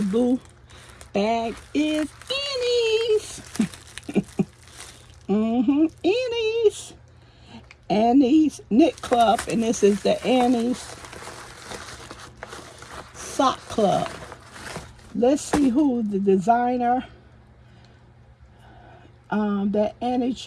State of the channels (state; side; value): identical; both; correlation 1.00